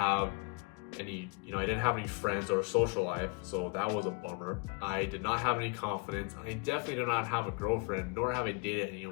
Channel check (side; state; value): right; quieter; 32.2 dB